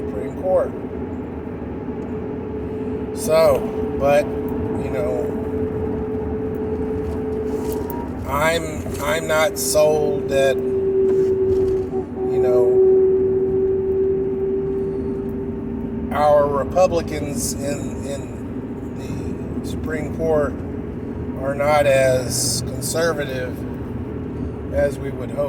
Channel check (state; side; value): identical; both; correlation 1.00